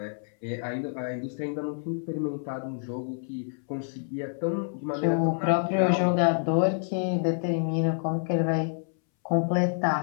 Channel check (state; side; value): silent; right; 60 dB below the other